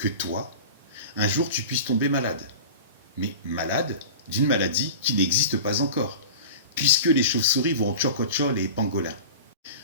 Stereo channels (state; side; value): inverted; both; correlation -0.34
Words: toi, un jour tu puisses tomber malade. Mais malade d'une maladie qui n'existe pas encore, puisque les chauves-souris vont tchokocho les pangolins.